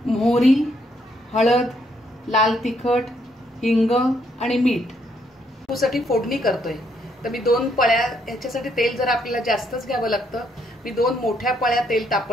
मोहरी, हळद, लाल तिखट, हिंग आणि मीठ। तक्कूसाठी फोडणी करतोय तर मी 2 पळ्या, याच्यासाठी तेल जरा आपल्याला जास्तच घ्यावं लागतं। मी 2 मोठ्या पळ्या तेल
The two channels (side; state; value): both; normal; correlation 0.72